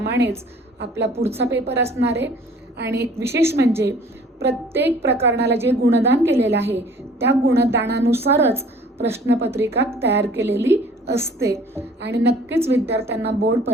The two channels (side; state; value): both; normal; correlation 0.52